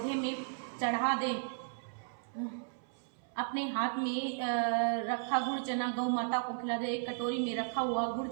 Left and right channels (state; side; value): silent; left; 55 dB below the other